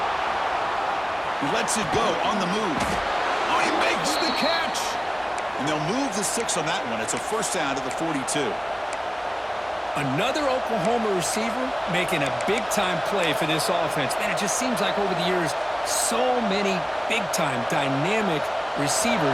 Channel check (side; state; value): both; identical; correlation 1.00